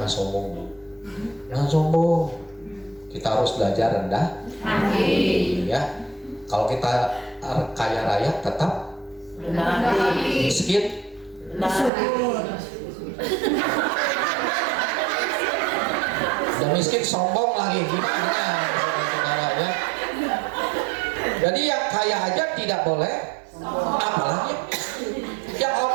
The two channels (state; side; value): drops out; left; at 11.9 s